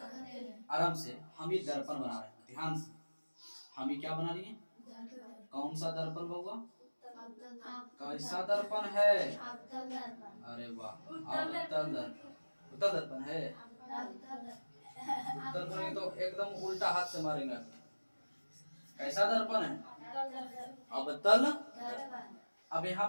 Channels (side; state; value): both; inverted; correlation -1.00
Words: आराम से हम ये दर्पण बना रहे हैं, ध्यान से। हम ये क्या बना रही है? कौन सा दर्पण होगा? कैसा दर्पण है? अरे वाह, उत्तल दर्पण है। उत्तल दर्पण तो एकदम उल्टा हाथ से मारेंगे। कैसा दर्पण है? अवतल। अब यहाँ